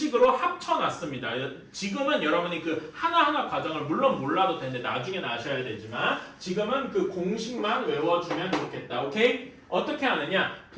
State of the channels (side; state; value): both; identical; correlation 1.00